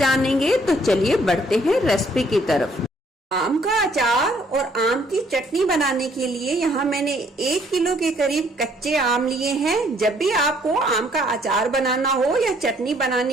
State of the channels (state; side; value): normal; both; correlation 0.65